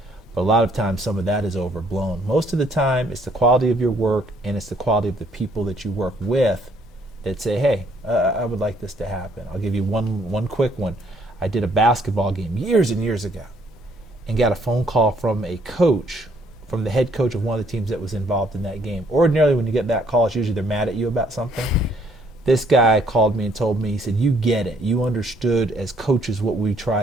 But a lot of times, some of that is overblown. Most of the time, it's the quality of your work, and it's the quality of the people that you work with that say, hey, I would like this to happen. I'll give you one quick one. I did a basketball game years and years ago and got a phone call from a coach, from the head coach of one of the teams that was involved in that game. Ordinarily, when you get that call, it's usually they're mad at you about something. This guy called me and told me, he said, you get it. You understood as coaches what we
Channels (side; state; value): both; normal; correlation 0.66